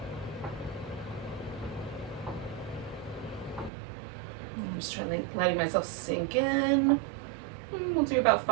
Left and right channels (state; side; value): drops out; left; at 3.7 s